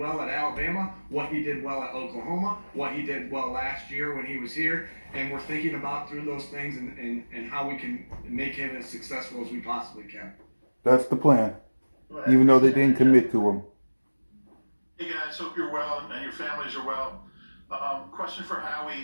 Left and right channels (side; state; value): both; inverted; correlation -1.00